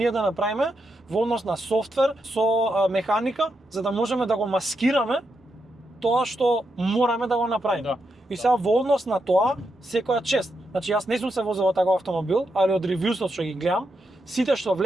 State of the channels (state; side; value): normal; both; correlation 0.83